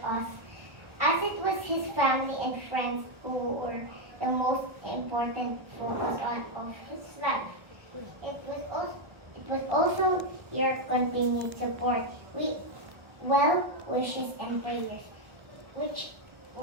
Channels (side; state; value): left; late; 1.4 ms